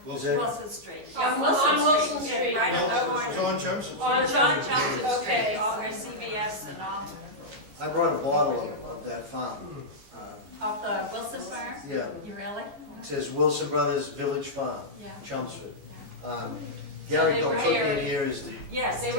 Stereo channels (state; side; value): late; left; 14 ms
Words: Wilson. Wilson Street. On Yeah, Wilson Street. Right on the No, corner. John Chelmsford. On John Chelmsford Street, Okay. all where CVS and all, I brought a bottle of that farm. of the Wilson farm? Yeah, You really? it says Wilson Brothers Village Farm, Yeah. Chelmsford. Gary So they were Galtugian dairy. here is the, Yes, They